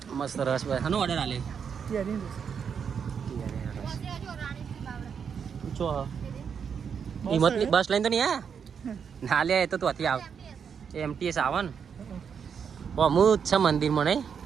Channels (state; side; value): quieter; left; 6.9 dB